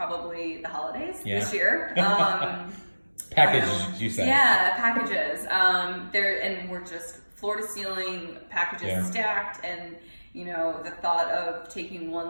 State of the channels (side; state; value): both; inverted; correlation -1.00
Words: the holidays this year. Packages, you said. Yeah, packages. And we're just floor to ceiling packages stacked, and the thought of taking one